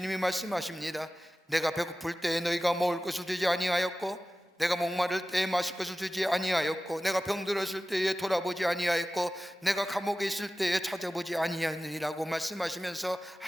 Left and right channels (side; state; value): both; normal; correlation 0.95